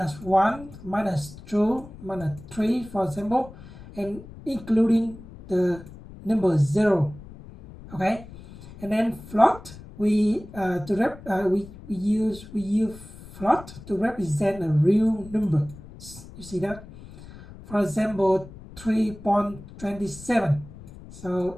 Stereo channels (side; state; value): left; noise; rumble, 17 dB below the sound